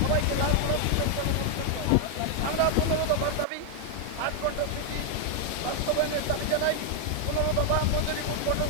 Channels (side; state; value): both; different; correlation 0.00